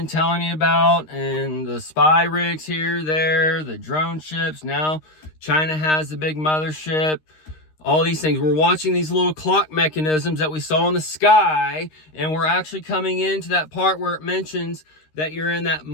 telling you about, and the spy rigs here, there, the drone ships. Now China has the big mothership. All these things. We're watching these little clock mechanisms that we saw in the sky, and we're actually coming into that part where it mentions that you're in that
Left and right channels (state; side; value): late; right; 13 ms